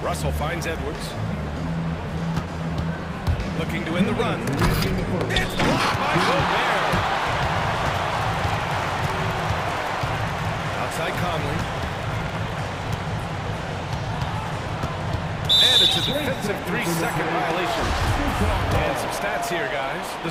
Russell finds Edwards. Looking to win the run. It's blocked by Gobert. Outside Conley. And it's a defensive 3-second violation. And some stats here, guys.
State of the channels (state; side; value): identical; both; correlation 1.00